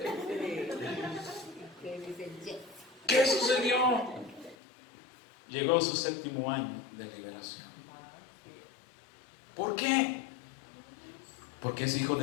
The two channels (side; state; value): right; drops out; at 4.5 s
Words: ¿Qué sucedió? Llegó su séptimo año de liberación. ¿Por qué? Porque es hijo